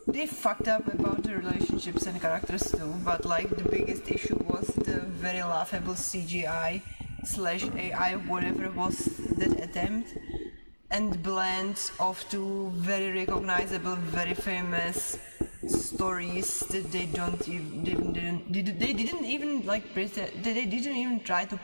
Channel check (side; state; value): both; inverted; correlation -1.00